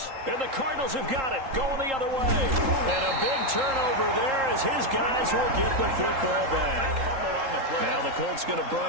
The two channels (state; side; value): late; left; 3.8 ms